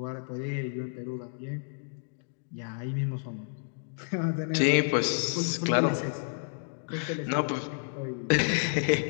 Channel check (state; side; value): silent; right; digital silence